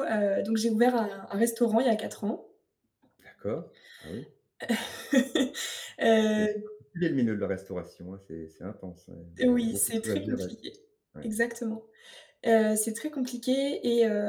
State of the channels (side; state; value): both; identical; correlation 1.00